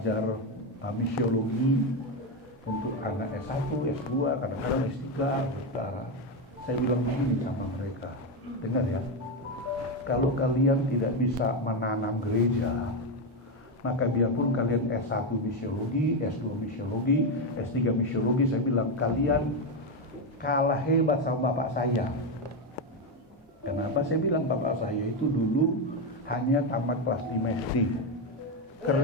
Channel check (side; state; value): both; normal; correlation 0.09